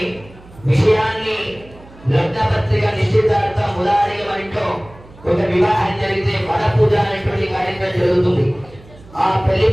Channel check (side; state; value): right; noise; hum, 23 dB below the sound